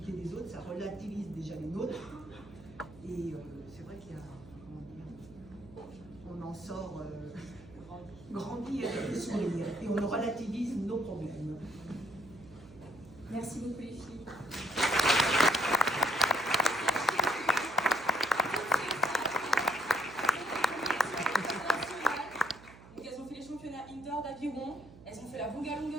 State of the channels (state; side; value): noise; right; hum, 20 dB below the sound